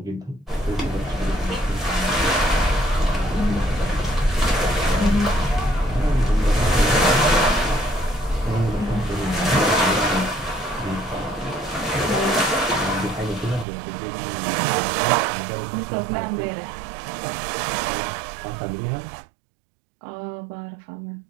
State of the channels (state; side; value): drops out; left; at 13.7 s